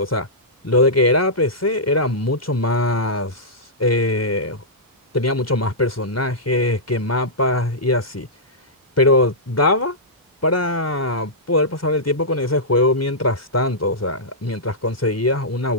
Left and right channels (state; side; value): normal; both; correlation -0.13